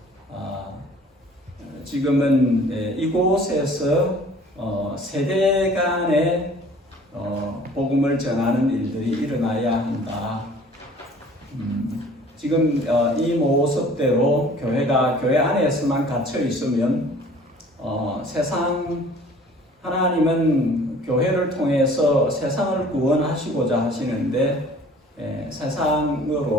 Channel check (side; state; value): both; normal; correlation 0.50